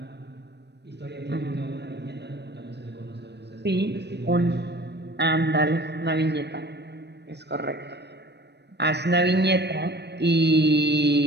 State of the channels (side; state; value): left; late; 0.50 ms